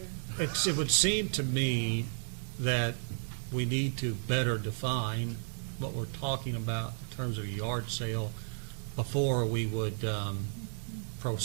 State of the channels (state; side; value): silent; left; digital silence